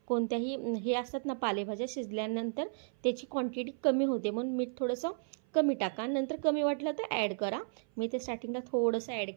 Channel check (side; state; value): left; silent; 55 dB below the other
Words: कोणत्याही हे असतात ना पालेभाज्या, शिजल्यानंतर त्याची क्वांटिटी कमी होते, म्हणून मीठ थोडंसं कमी टाका, नंतर कमी वाटलं तर ॲड करा। मी ते स्टार्टिंगला थोडंसं ॲड